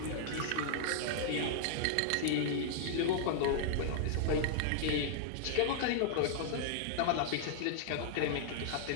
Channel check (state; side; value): different; both; correlation -0.01